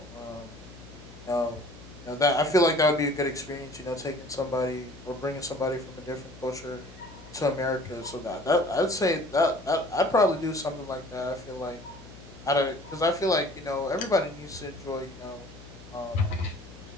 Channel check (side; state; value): left; noise; hum, 18 dB below the sound